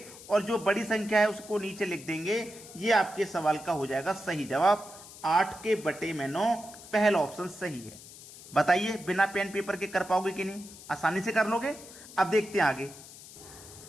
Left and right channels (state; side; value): noise; left; hiss, 17 dB below the sound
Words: और जो बड़ी संख्या है उसको नीचे लिख देंगे। ये आपके सवाल का हो जाएगा सही जवाब। 8/9 पहला ऑप्शन सही है। बताइए बिना पेन पेपर के कर पाओगे कि नहीं? आसानी से कर लोगे। अब देखते हैं आगे।